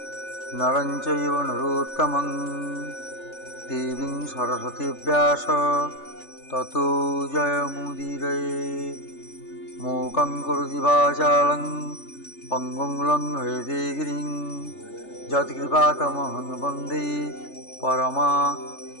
नरं चैव नरोत्तमं देवीं सरस्वतीं व्यास ततो जयमुदीरये। मूकं करोति वाचालं पङ्गुं लङ्घयते गिरिं यत्कृपातमहं वन्दे परमानन्दमाधवम्।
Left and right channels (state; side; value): late; right; 3.4 ms